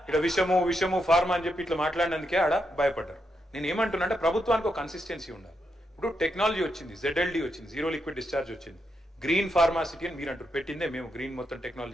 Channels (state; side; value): normal; both; correlation 0.83